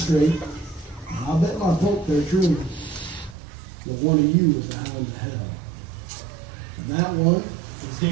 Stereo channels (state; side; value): drops out; left; at 3.4 s